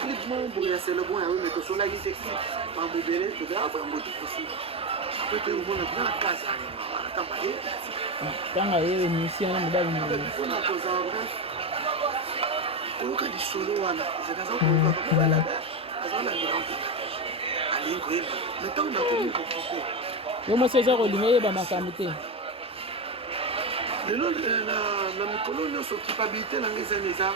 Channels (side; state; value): both; normal; correlation 0.14